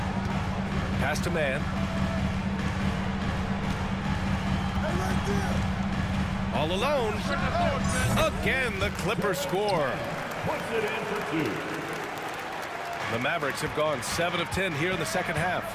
Pass to Man. All alone. Again, the Clippers score. The Mavericks have gone 7 of 10 here in the second half.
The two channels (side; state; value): both; identical; correlation 1.00